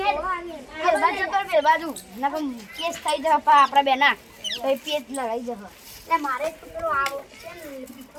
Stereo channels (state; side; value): identical; both; correlation 1.00